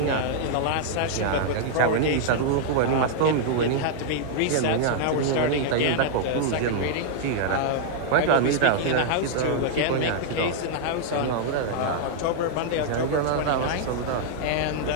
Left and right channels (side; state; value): both; different; correlation -0.01